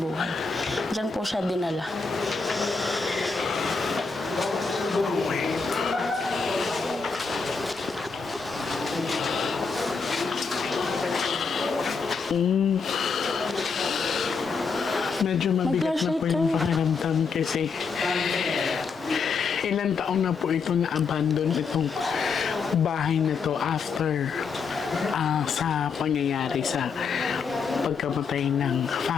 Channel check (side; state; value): right; quieter; 5.0 dB